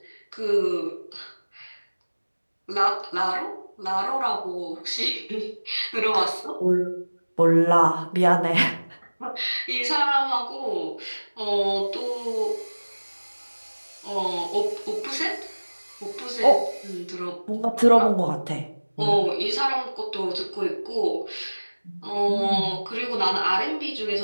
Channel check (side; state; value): both; inverted; correlation -1.00